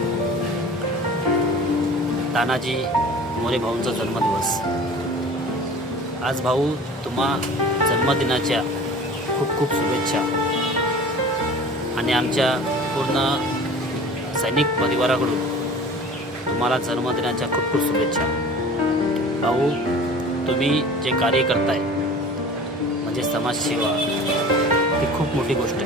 तानाजी मोरे भाऊंचा जन्मदिवस। आज भाऊ, तुम्हा जन्मदिनाच्या खूप खूप शुभेच्छा आणि आमच्या पूर्ण सैनिक परिवाराकडून तुम्हाला जन्मदिनाच्या खूप खूप शुभेच्छा। भाऊ, तुम्ही जे कार्य करताय म्हणजे समाजसेवा, ही खूप मोठी गोष्ट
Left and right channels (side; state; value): both; normal; correlation 0.41